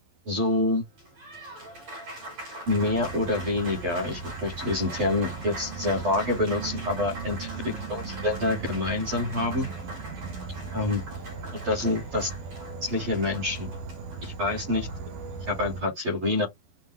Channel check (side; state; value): left; late; 12 ms